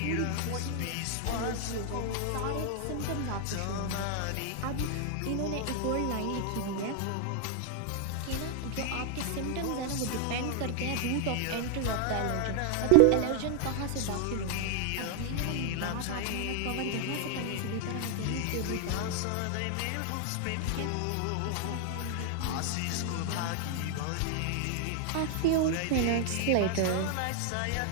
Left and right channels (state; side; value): different; both; correlation 0.00